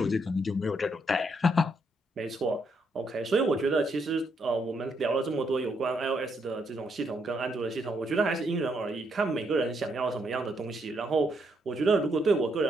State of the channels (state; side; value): normal; both; correlation 0.76